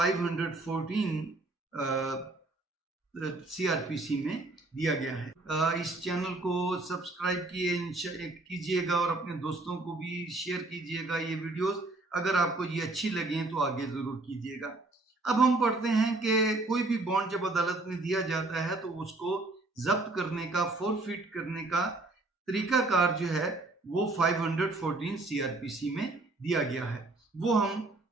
CRPC में दिया गया है। इस चैनल को सब्सक्राइब कीजिएगा और अपने दोस्तों को भी शेयर कीजिएगा ये वीडियोस। अगर आपको ये अच्छी लगे तो आगे ज़रूर कीजिएगा। अब हम पढ़ते हैं कि कोई भी बॉन्ड जब अदालत में दिया जाता है तो उसको जब्त करने का, फोरफिट करने का तरीकाकार जो है वो 514 CRPC में दिया गया है। वो हम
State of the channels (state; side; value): quieter; left; 3.0 dB